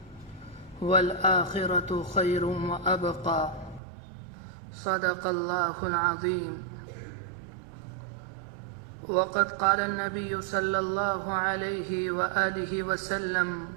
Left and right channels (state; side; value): drops out; left; at 3.8 s